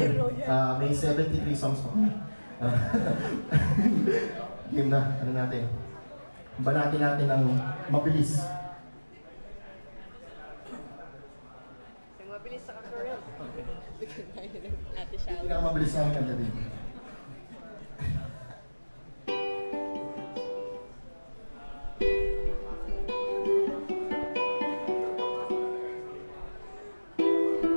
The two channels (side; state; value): both; inverted; correlation -1.00